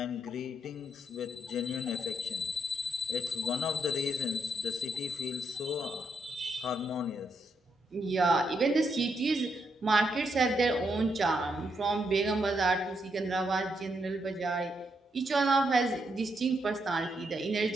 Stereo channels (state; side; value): normal; both; correlation 0.79